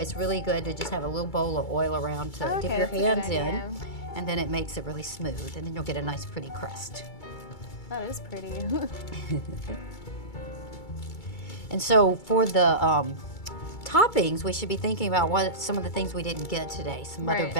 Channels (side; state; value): right; late; 2.3 ms